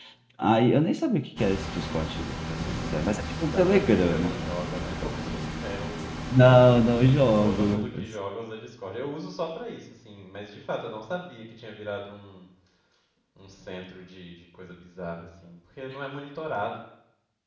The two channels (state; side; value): identical; both; correlation 1.00